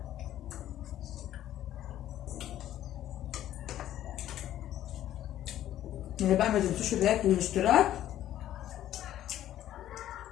اللي بقى ما تنسوش اللايك والاشتراك.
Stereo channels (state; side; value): quieter; right; 12.4 dB